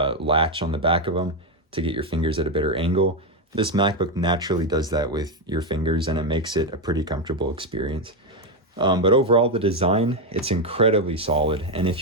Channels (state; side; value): normal; both; correlation 0.06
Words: on the back of them to get your fingers at a better angle. This MacBook naturally does that with your fingers, and it makes it a pretty comfortable experience. But overall, the design, it's incredibly solid. And